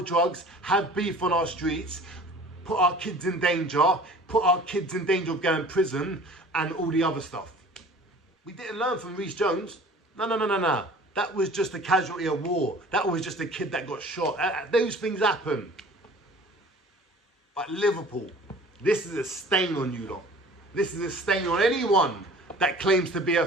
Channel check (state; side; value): normal; both; correlation 0.46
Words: have beef on our streets, put our kids in danger, put our kids in danger of going to prison, and all the other stuff. We didn't learn from Reece Jones. No. That was just a casualty of war. That was just a kid that got shot. Those things happen. But Liverpool, this is a stain on you lot. This is a stain on anyone that claims to be a